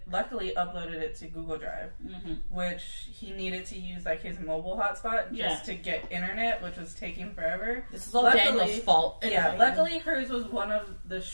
luckily uploaded it to Google Drive, which he needed to use like his mobile hotspot just to get internet, which was taking forever. This is all Daniel's fault. Yeah, luckily hers was one of the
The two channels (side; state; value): both; inverted; correlation -1.00